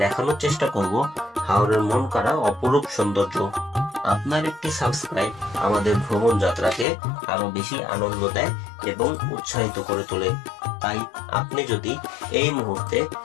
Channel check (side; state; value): right; drops out; at 6.9 s